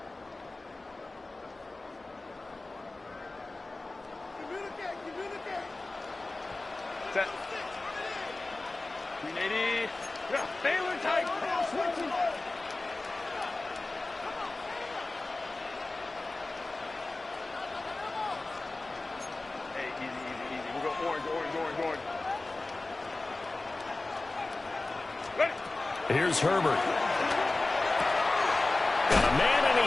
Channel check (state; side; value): quieter; right; 3.1 dB